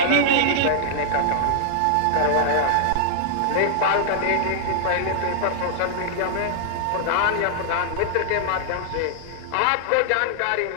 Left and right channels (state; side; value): different; both; correlation -0.01